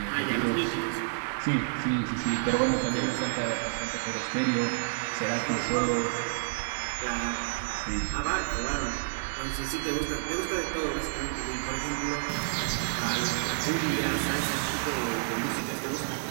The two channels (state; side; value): silent; left; digital silence